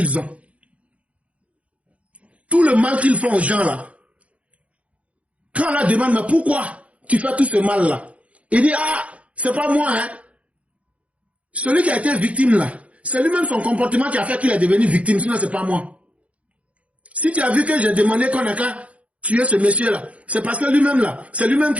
ont. Tout le mal qu'ils font aux gens, là, quand on leur demande, mais pourquoi tu fais tout ce mal-là? Il dit, ah, c'est pas moi, hein. Celui qui a été victime, là, c'est lui-même son comportement qui a fait qu'il est devenu victime, sinon c'est pas moi. Si tu as vu que j'ai demandé qu'on a qu'à tuer ce monsieur-là, c'est parce que lui-même, là, c'est lui-même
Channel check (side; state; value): left; late; 0.065 ms